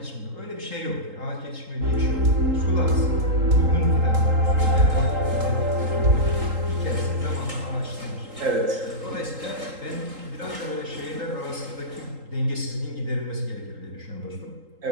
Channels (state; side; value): late; left; 3.8 ms